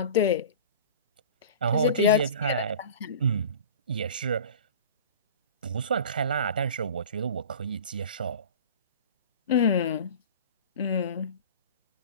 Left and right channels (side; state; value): both; inverted; correlation -0.38